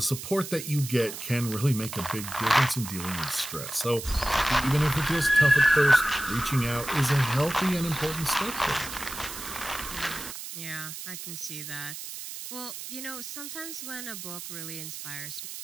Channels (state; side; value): noise; right; hiss, 9 dB below the sound